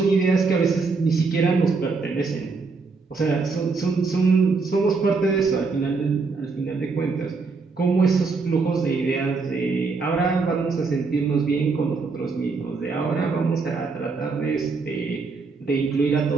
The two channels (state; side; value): quieter; left; 4.4 dB